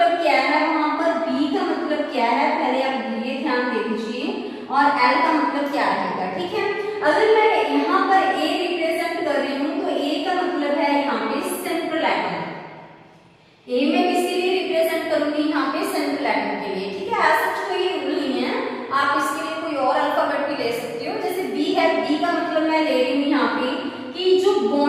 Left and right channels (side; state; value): both; identical; correlation 1.00